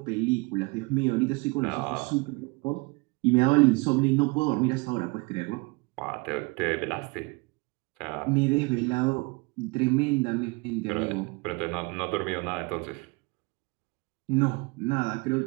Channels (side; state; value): left; quieter; 27.6 dB